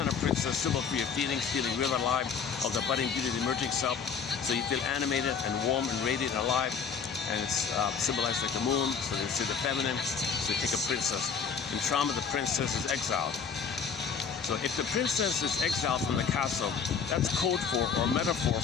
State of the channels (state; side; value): quieter; right; 6.3 dB